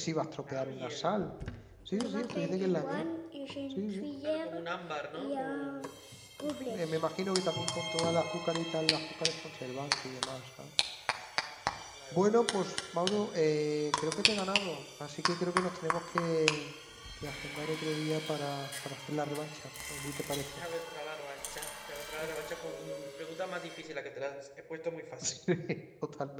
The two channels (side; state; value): both; identical; correlation 1.00